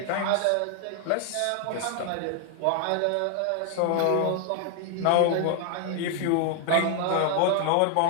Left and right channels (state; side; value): different; both; correlation 0.00